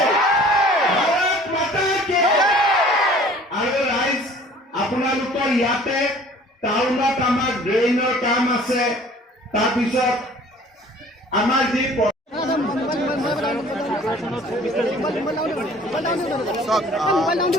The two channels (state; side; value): normal; both; correlation 0.51